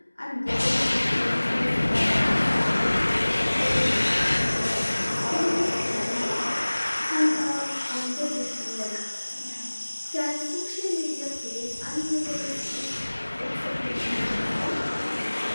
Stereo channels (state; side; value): inverted; both; correlation -1.00